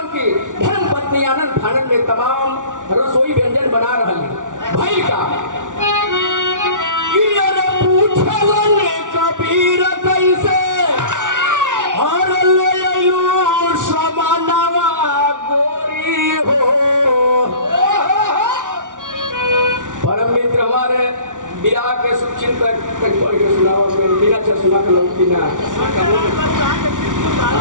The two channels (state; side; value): late; left; 0.87 ms